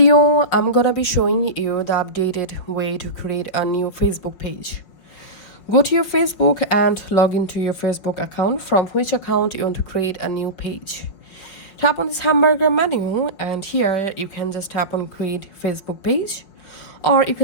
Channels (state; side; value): late; right; 5.5 ms